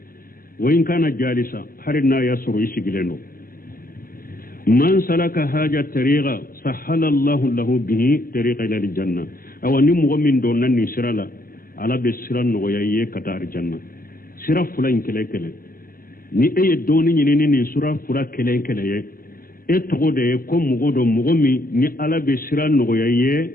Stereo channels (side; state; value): right; late; 0.42 ms